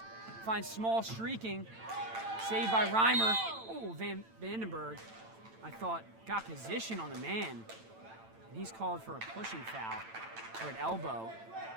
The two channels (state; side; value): late; left; 8.9 ms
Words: Finds Small streaking. Saved by Reimer. Oh, Vandenberg, I thought, got position on the man. And he's called for a pushing foul, or an elbow.